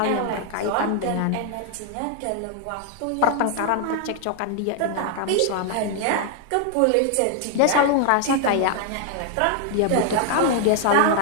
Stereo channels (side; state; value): both; different; correlation 0.00